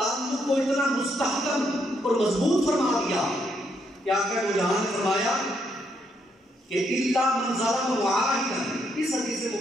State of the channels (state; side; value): normal; both; correlation 0.75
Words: کو اتنا مستحکم اور مضبوط فرما دیا کہ آقا دو جہاں نے فرمایا کہ الا من ظلم معاہدا، اس حدیث